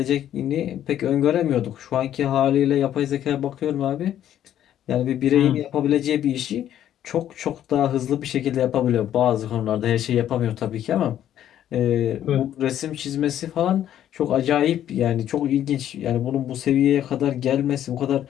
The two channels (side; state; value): right; quieter; 11.1 dB